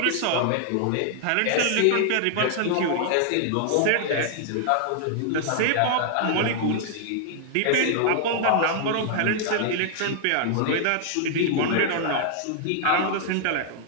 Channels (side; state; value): both; different; correlation -0.01